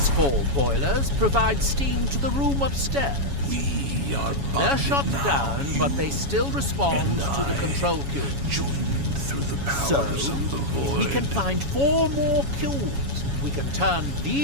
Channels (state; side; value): late; left; 7.2 ms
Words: 4 boilers provide steam to the room upstairs. We are They're bonded shut now, down, but they still respond and to the I, control cube. joined through the So, powers of the void. we can find 4 more cubes. We can turn